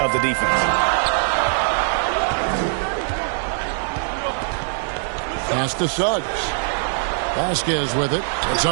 the defense. Pass to Suggs. Vasquez with it. It's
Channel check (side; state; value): left; silent; 64 dB below the other